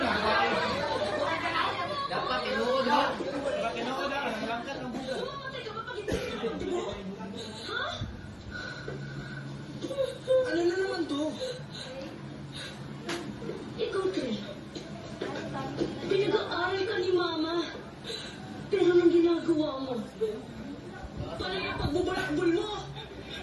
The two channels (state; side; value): identical; both; correlation 1.00